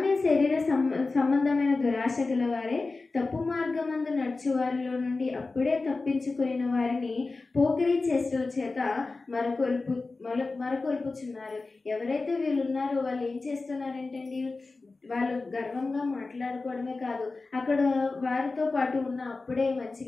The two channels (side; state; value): right; quieter; 3.7 dB